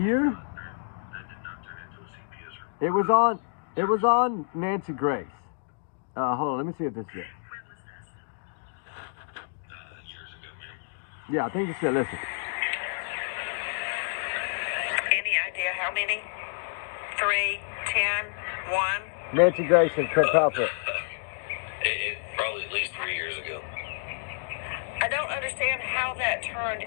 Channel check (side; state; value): right; silent; digital silence